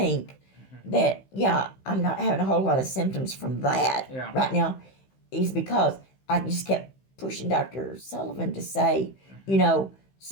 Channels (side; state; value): right; late; 15 ms